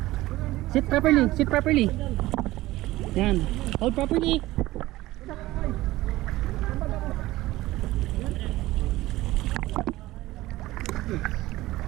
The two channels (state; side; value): quieter; left; 17.4 dB